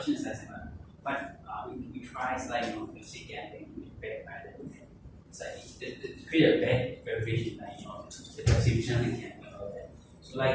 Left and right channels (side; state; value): both; identical; correlation 1.00